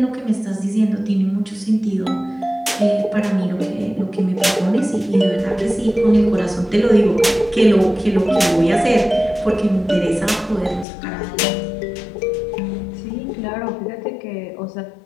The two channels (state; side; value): drops out; right; at 10.9 s